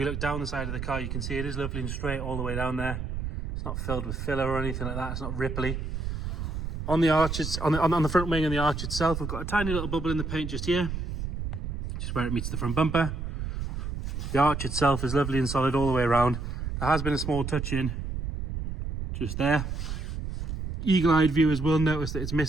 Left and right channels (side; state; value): right; noise; rumble, 4 dB below the sound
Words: look down the side of the car, you can see it is lovely and straight all the way down there. It's not filled with filler or anything like that. It's not ripply. On the arch, on the front wing and the arch itself, we've got a tiny little bubble in the paint just here, just where it meets the front bumper. The arch itself is lovely and solid all the way around. There has been a small touch in just there. Eagle-eyed viewers will notice that it's